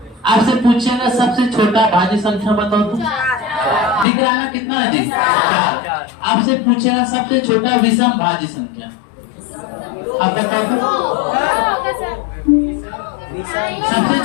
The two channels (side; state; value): right; drops out; at 4.0 s